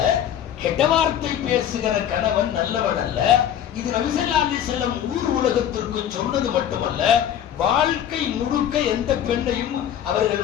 கெட்ட வார்த்தை பேசுகிற கணவன் நல்லவன் அல்ல. இது நபி ஸல்லல்லாஹு அலைஹி வஸல்லம் ஊர் உலகத்திற்கு சொன்னது மட்டுமல்ல, வாழ்க்கை முழுக்க எந்த பெண்ணையும்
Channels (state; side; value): quieter; right; 10.1 dB